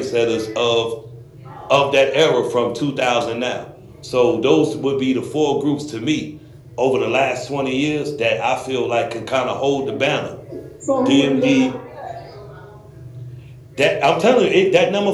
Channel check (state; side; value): identical; both; correlation 1.00